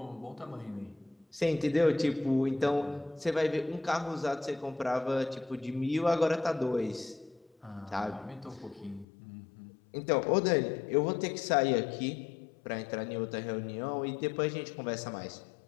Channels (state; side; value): drops out; right; at 9.1 s